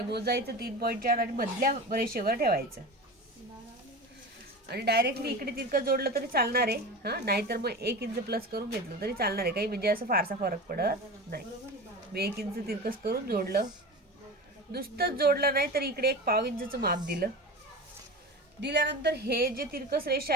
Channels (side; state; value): both; normal; correlation 0.30